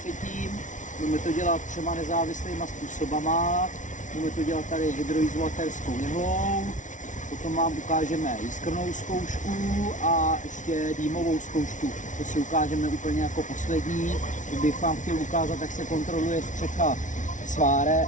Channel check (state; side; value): late; right; 0.37 ms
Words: Budeme to dělat 3 nezávislýma způsobama. Budeme to dělat tady hydroizolatérskou jehlou, potom vám ukážeme jiskrnou zkoušku a ještě dýmovou zkoušku. To si ukážeme úplně jako poslední. Kdybych vám chtěl ukázat, jak se kontroluje střecha sváre.